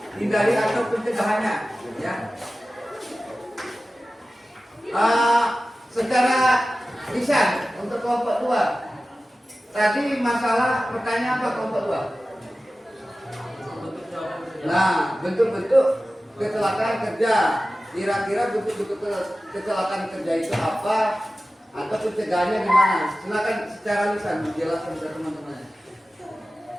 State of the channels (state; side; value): normal; both; correlation 0.95